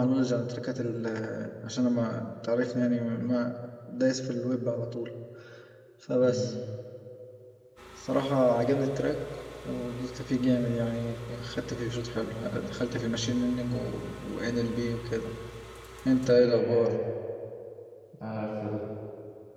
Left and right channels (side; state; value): both; identical; correlation 1.00